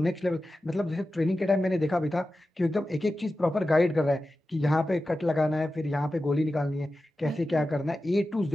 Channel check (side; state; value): both; normal; correlation 0.93